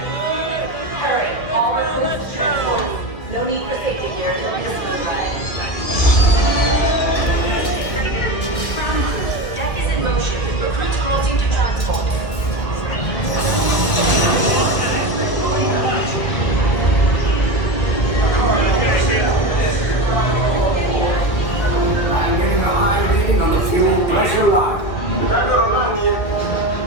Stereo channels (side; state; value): right; late; 2.1 ms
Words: Hurry, all recruits transport. No need for safety gear until we just move right. Ground crew, deck is in motion. Recruits crossing to transport. I'm getting a high reading on the fuel pressure line.